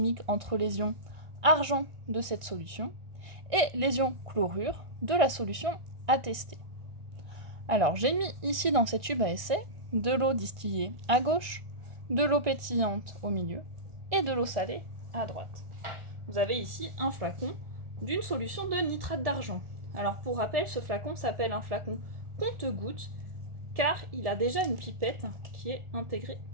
entre les ions argent de cette solution et les ions chlorure de la solution à tester. Alors j'ai mis ici dans cette tube à essai de l'eau distillée à gauche, de l'eau pétillante au milieu et de l'eau salée à droite. Vous avez ici un flacon d'une solution de nitrate d'argent. Alors pour rappel, ce flacon s'appelle un flacon compte-gouttes car il a déjà une pipette qui est intégrée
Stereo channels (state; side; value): late; left; 1.4 ms